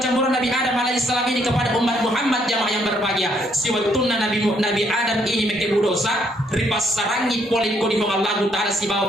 Nabi Adam alaihissalam ini kepada umat Muhammad jamaah yang berbahagia. Si waktu Nabi Adam ini mekebu dosa ripasarangi poliko di Allah Taala si bawa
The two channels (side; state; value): both; normal; correlation 0.70